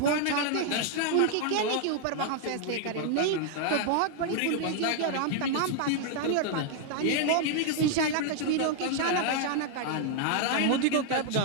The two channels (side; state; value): both; different; correlation 0.00